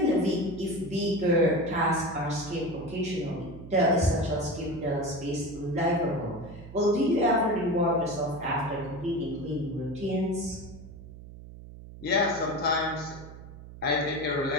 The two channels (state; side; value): noise; right; hum, 15 dB below the sound